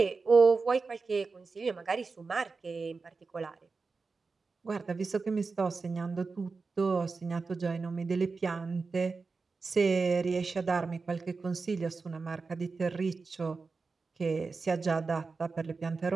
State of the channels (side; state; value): left; quieter; 4.3 dB